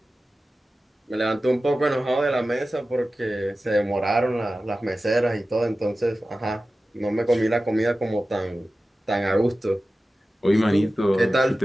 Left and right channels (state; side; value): normal; both; correlation 0.95